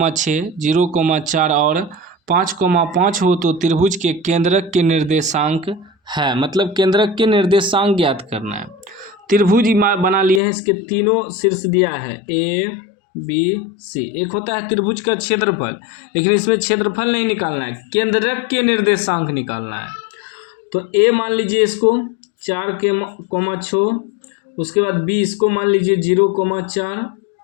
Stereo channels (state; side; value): drops out; right; at 10.4 s